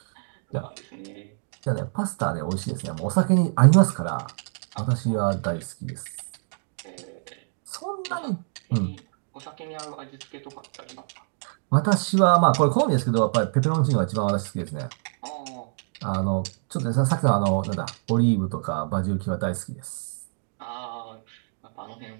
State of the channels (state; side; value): silent; left; 61 dB below the other